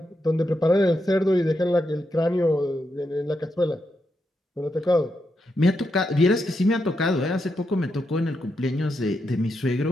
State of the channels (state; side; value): normal; both; correlation 0.84